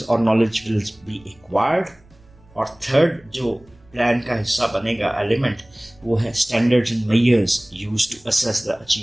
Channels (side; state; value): right; noise; rumble, 29 dB below the sound